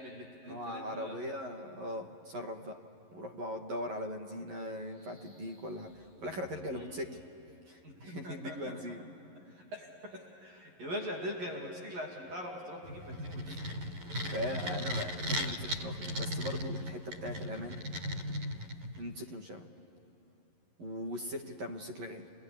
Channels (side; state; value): left; late; 11 ms